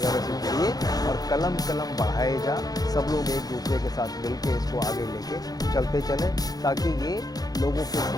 से जुड़िए और कलम बढ़ाए जा। सब लोग एक दूसरे के साथ मिल के इसको आगे लेके चलते चलें, ताकि ये लोगों के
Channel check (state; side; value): late; right; 0.19 ms